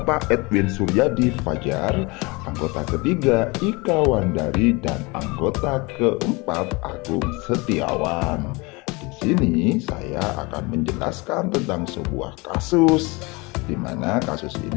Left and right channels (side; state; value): right; quieter; 26.1 dB